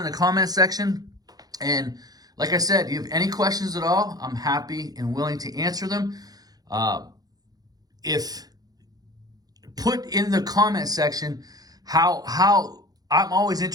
the comment section. And like I said, if you have any questions at all, I'm happy and willing to answer them. If put in the comment section how I'm always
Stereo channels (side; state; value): left; late; 0.19 ms